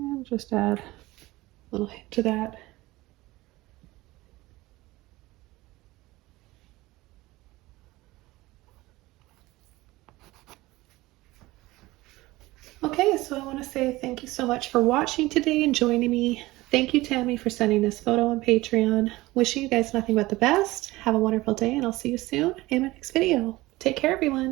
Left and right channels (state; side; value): quieter; left; 19.4 dB